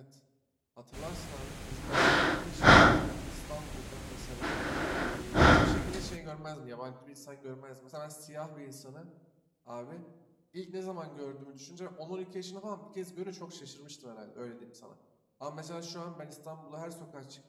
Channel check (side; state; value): both; identical; correlation 1.00